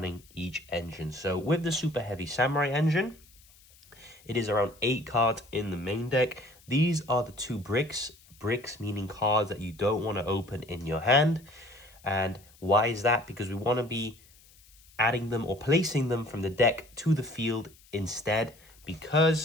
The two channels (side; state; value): left; noise; hiss, 27 dB below the sound